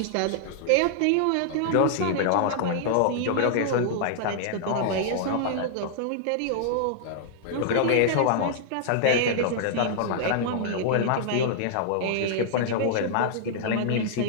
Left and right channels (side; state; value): both; different; correlation -0.01